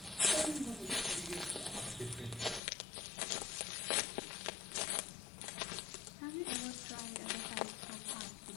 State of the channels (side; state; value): right; drops out; at 2.6 s